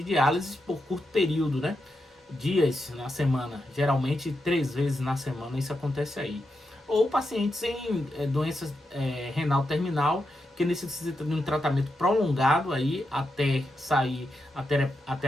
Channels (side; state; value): both; normal; correlation 0.86